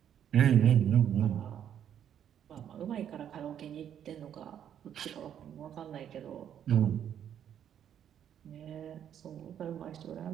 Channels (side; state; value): left; quieter; 9.5 dB